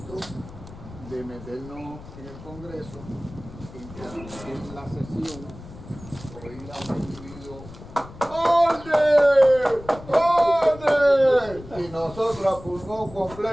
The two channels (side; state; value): left; noise; rumble, 16 dB below the sound